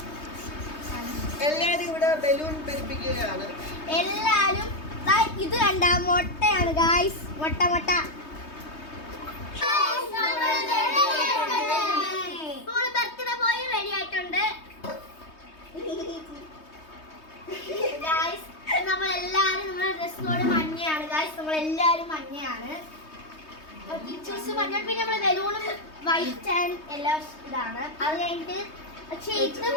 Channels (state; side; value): late; right; 3.2 ms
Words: എല്ലാരും ഇവിടെ ബലൂൺ പെരുപ്പിക്കുകയാണ്. എല്ലാരും ഇത് കണ്ട മുട്ടയാണ് ഗായ്സ്. മുട്ട ബർത്ത്ഡേ പോയി റെഡി ആയിട്ടുണ്ട് ഗായ്സ്. നമ്മളെല്ലാരും നമ്മുടെ ഡ്രസ് കോഡ് മഞ്ഞയാണ് ഗായ്സ്. നമ്മളെല്ലാരും മഞ്ഞയാണ്. ടീച്ചേഴ്സ് മഞ്ഞ, പിന്നെ നമ്മള് ബലൂണും വൈറ്റ് ആൻഡ് എല്ലാം ഇതാണ്. അത് കഴിഞ്ഞിട്ട് പക്ഷെ ഇത്